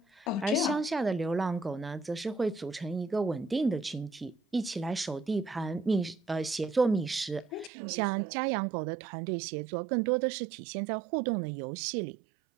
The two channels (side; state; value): left; drops out; at 7.7 s